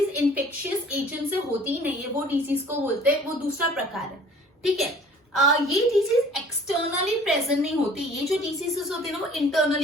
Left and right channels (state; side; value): normal; both; correlation 0.51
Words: इन्फेक्शियस एजेंट से होती ही नहीं है वो डिजीज को बोलते हैं, वो दूसरा प्रकार है। ठीक है, ये डिजीज एक्सटर्नली प्रेजेंट नहीं होती। ये जो डिजीजेस होती है ना वो